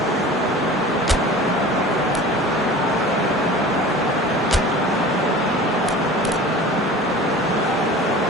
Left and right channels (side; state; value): both; normal; correlation 0.39